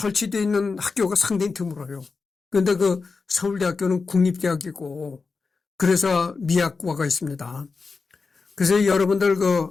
있는 학교가 상당히 드물어요. 그런데 그 서울대학교는 국립대학이고 그래서 미학과가 있습니다. 그래서 여러분들 그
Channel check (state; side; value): quieter; right; 4.5 dB